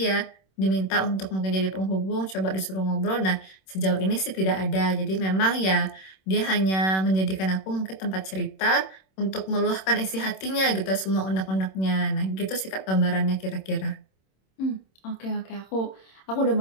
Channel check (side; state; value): right; late; 26 ms